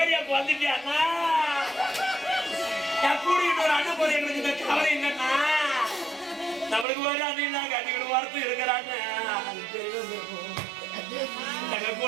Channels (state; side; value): drops out; left; at 6.9 s